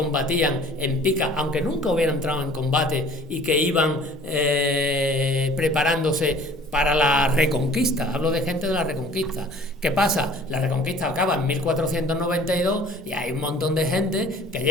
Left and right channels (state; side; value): normal; both; correlation 0.49